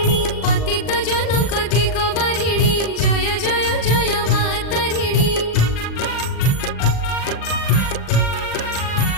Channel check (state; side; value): late; right; 40 ms